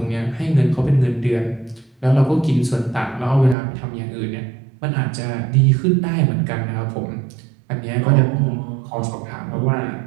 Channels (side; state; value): left; drops out; at 3.6 s